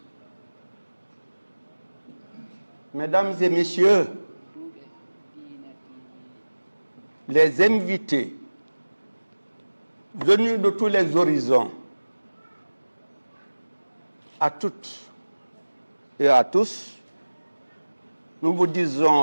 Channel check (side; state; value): both; inverted; correlation -1.00